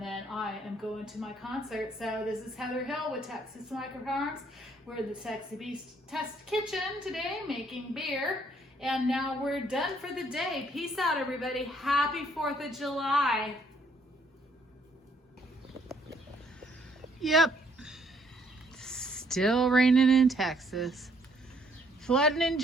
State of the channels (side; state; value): both; normal; correlation 0.66